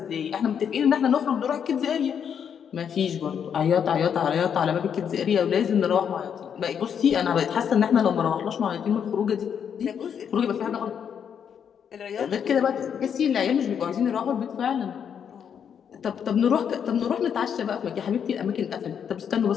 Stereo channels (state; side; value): quieter; right; 7.9 dB